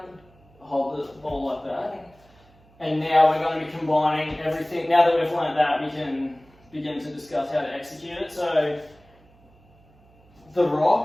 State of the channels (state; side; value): noise; right; hum, 29 dB below the sound